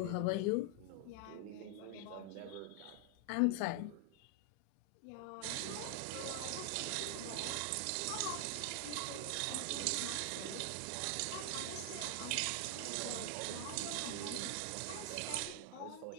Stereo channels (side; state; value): both; different; correlation 0.00